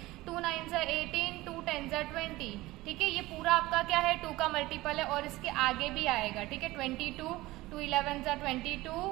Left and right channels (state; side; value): quieter; left; 18.9 dB